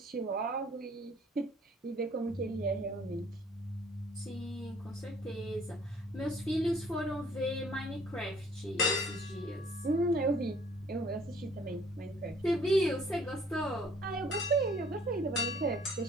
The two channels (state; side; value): normal; both; correlation 0.57